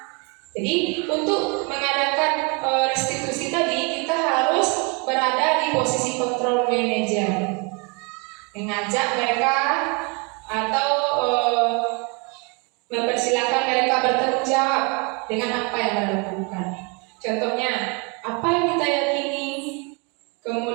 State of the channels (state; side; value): quieter; left; 32.2 dB